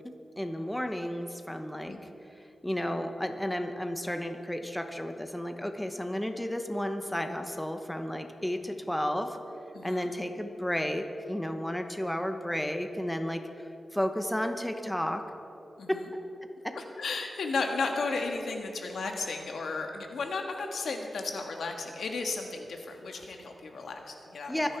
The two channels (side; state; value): both; normal; correlation 0.95